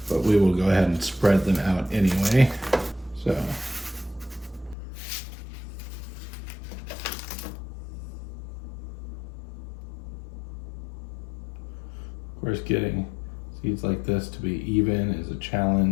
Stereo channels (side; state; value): right; drops out; at 4.8 s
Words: but we will go ahead and spread them out anyway. So course, getting seeds like this to be even is a